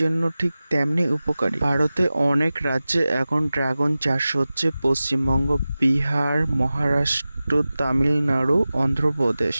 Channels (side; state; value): both; inverted; correlation -0.96